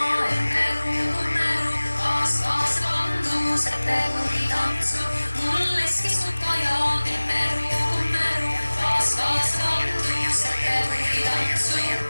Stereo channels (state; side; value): inverted; both; correlation -1.00